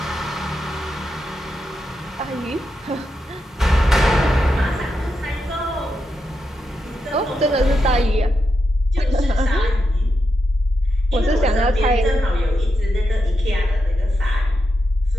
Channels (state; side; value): normal; both; correlation 0.86